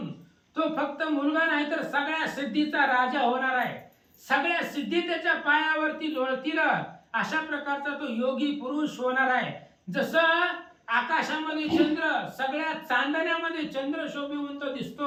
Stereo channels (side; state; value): both; identical; correlation 1.00